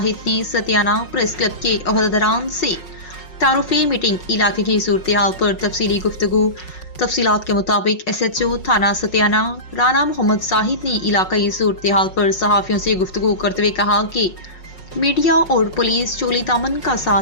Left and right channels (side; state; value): right; late; 5.5 ms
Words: ने सतियाना प्रेस क्लब के अहदेदारान से तारुफी मीटिंग इलाके की सूरत हाल पर तफसीली गुफ्तगू। तफसीलात के मुताबिक SHO थाना सतियाना राना मोहम्मद जाहिद ने इलाकाई सूरत हाल पर सहाफ़ियों से गुफ्तगू करते हुए कहा कि मीडिया और पुलिस चोली दामन का